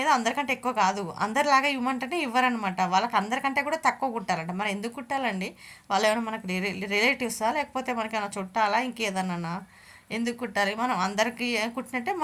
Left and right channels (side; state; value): both; identical; correlation 1.00